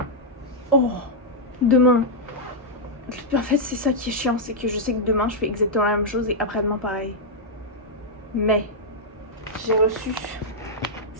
Oh, demain. En fait, c'est ça qui est chiant, c'est que je sais que demain je fais exactement la même chose et après-demain pareil. Mais j'ai reçu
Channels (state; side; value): normal; both; correlation -0.06